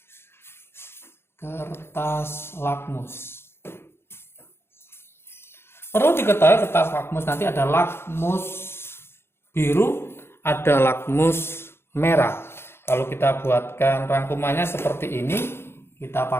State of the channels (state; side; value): late; right; 0.12 ms